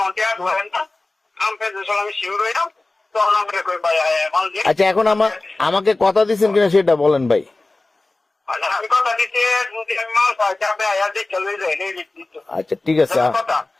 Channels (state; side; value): quieter; right; 3.1 dB